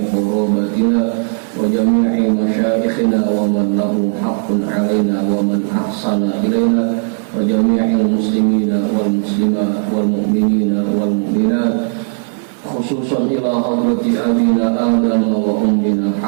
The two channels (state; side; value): silent; left; digital silence